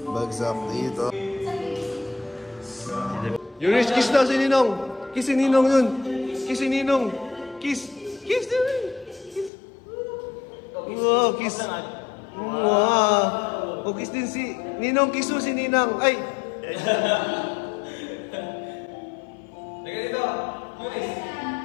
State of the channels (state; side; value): drops out; right; at 9.5 s